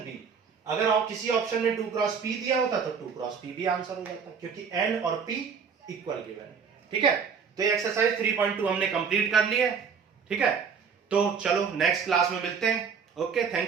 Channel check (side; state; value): left; quieter; 6.2 dB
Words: बी। अगर आप किसी ऑप्शन में 2 क्रॉस p दिया होता तो 2 क्रॉस p भी आंसर हो जाता, क्योंकि n और p इक्वल गिवन है, ठीक है। तो ये एक्सरसाइज 3.2 हमने कंप्लीट कर लिया है, ठीक है। तो चलो नेक्स्ट क्लास में मिलते हैं, ओके,